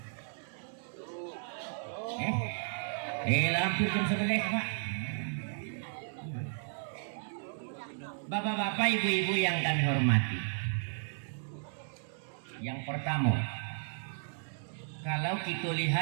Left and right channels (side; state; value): left; silent; digital silence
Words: Hampir jam 11 Pak. Bapak-bapak, ibu-ibu yang kami hormati. Yang pertama, kalau kita